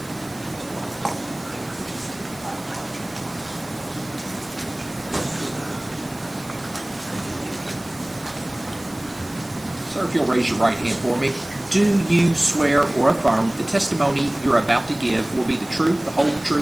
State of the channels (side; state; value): right; noise; hiss, 20 dB below the sound